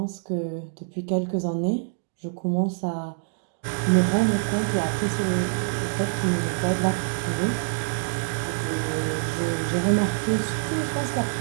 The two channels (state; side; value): silent; left; digital silence